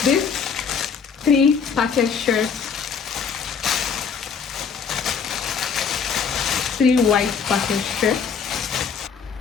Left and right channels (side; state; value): right; quieter; 6.3 dB